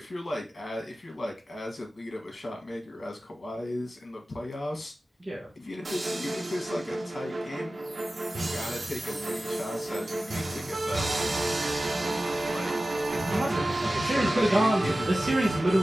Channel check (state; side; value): normal; both; correlation 0.95